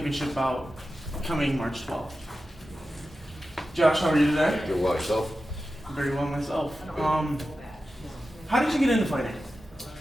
bout coming March 12th. Josh, how are you today? Doing well yourself? Very well myself. How did you get into fighting?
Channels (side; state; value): both; normal; correlation 0.93